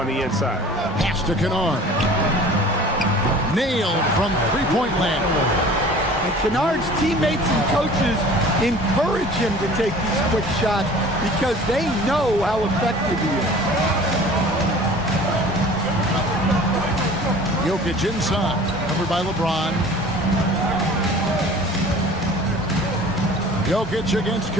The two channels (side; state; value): both; normal; correlation 0.45